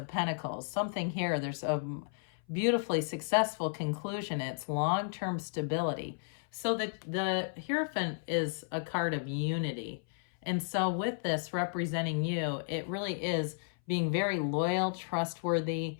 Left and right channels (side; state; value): right; silent; 56 dB below the other